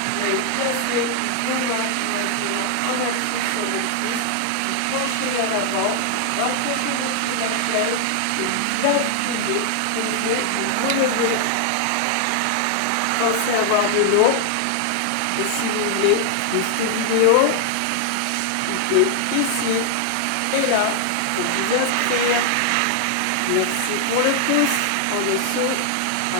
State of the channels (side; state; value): both; different; correlation 0.00